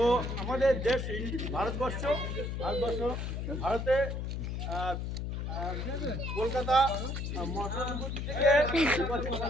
আমাদের দেশ ভারতবর্ষ ভারতে কলকাতা মহানগর থেকে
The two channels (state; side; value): noise; left; hum, 3 dB below the sound